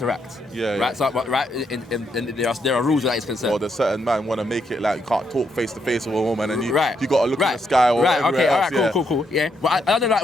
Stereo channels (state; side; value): normal; both; correlation 0.77